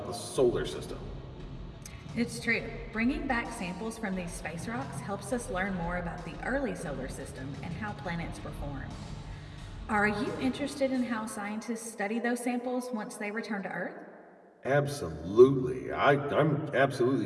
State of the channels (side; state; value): both; identical; correlation 1.00